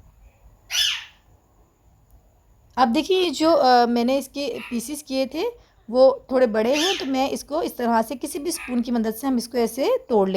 अब देखिए जो मैंने इसके पीसीस किए थे वो थोड़े बड़े हैं, तो मैं इसको इस तरह से किसी भी स्पून की मदद से हम इसको ऐसे तोड़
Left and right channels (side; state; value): both; identical; correlation 1.00